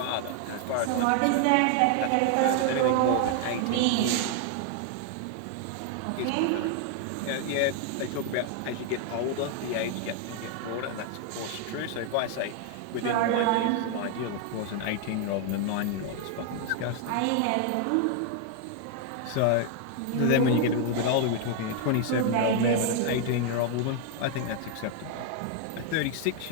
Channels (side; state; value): both; different; correlation 0.00